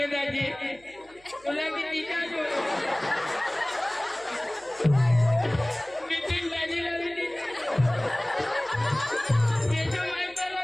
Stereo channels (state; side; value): noise; right; hum, 28 dB below the sound